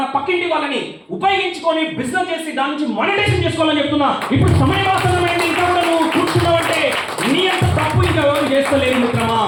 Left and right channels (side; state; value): both; identical; correlation 1.00